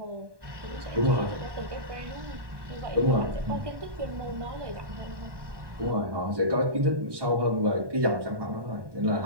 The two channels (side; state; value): left; late; 1.2 ms